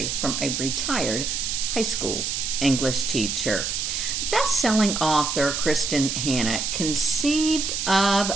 from a retired high school English teacher. Best-selling author Kristin Hannah conceived of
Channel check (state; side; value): noise; right; hiss, 2 dB below the sound